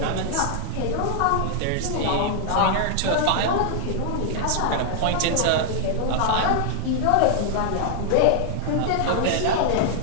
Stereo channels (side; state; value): both; different; correlation -0.01